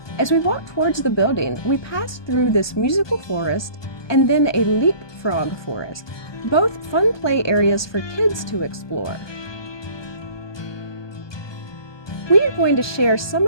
As we walked towards the building, we passed through this musical forest and then a leapfrog forest, both fun play areas for kids to explore. We are going to share some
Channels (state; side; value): late; right; 1.2 ms